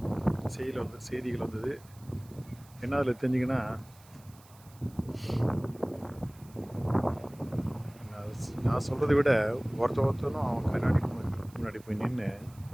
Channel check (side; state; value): right; noise; hiss, 26 dB below the sound